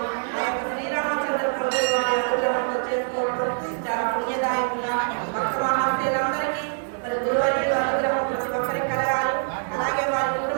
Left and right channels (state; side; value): silent; left; digital silence